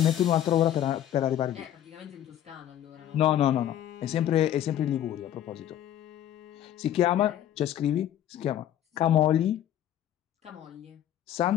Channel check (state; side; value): quieter; right; 11.3 dB